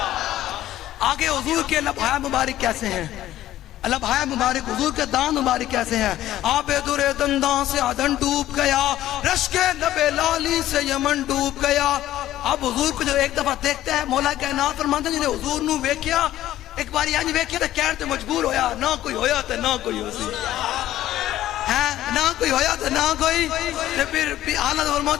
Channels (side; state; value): right; quieter; 13.7 dB